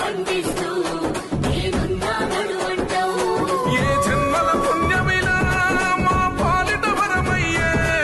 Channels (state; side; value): identical; both; correlation 1.00